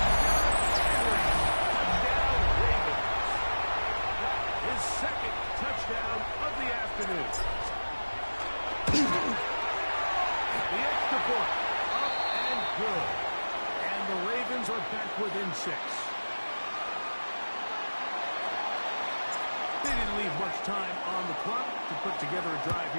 Henry. Touchdown, Ravens. His second touchdown of the afternoon. The extra point, up and good. And the Ravens are back within 6. They didn't leave much time on the clock to put together a drive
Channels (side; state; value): both; inverted; correlation -1.00